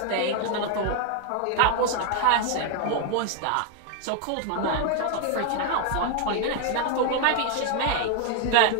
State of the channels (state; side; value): different; both; correlation 0.00